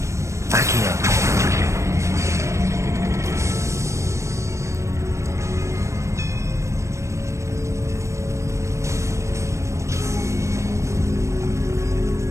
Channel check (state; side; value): late; left; 0.14 ms